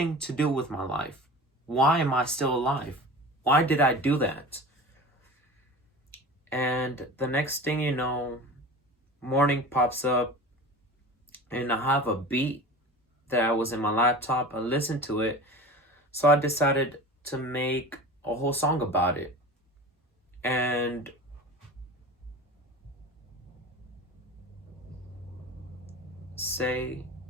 to do with my life. Why am I still alive? Why did I do that? And the next thing you know, morning pops up and I have a beat that was in my laptop. I listened to it. So I decided to make a whole song about it. And say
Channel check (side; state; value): both; normal; correlation 0.35